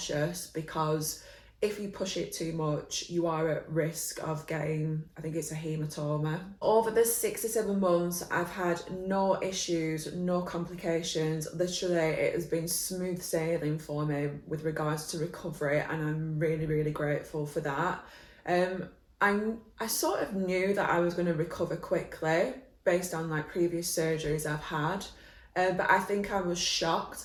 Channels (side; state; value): both; identical; correlation 1.00